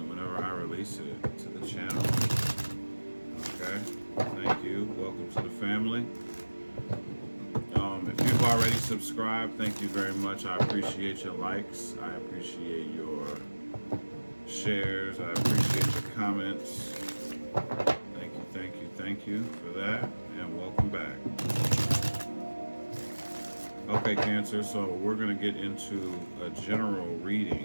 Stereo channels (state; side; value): inverted; both; correlation -1.00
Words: whenever I release it to the channel. Okay? Thank you. Welcome to the family. If you've already subscribed, thank you very much. I appreciate your likes. I appreciate your shares. I appreciate your comments. Thank you, thank you, thank you for that. And welcome back. Okay, Cancer, so we're going to get into a general